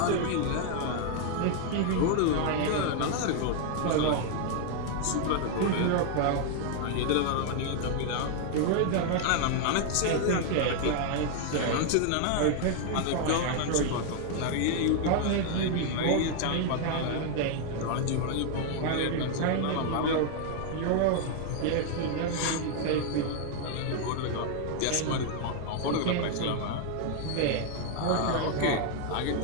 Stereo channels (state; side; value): different; both; correlation 0.00